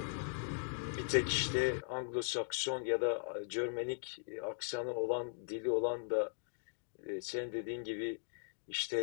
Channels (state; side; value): silent; right; digital silence